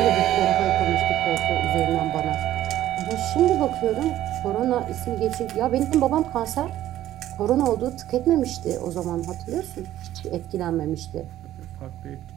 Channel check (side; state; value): left; quieter; 13.3 dB